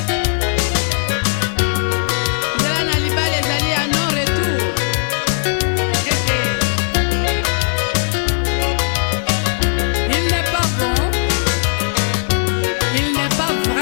devenir une seule chair, on voit aussi qu'on devient une seule chair psychologiquement, moralement, c'est-à-dire que devenir une seule chair, ça se passe dans 3 étapes, 3 niveaux. Donc, on devient une seule chair. Donc, on a un seul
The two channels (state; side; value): silent; right; digital silence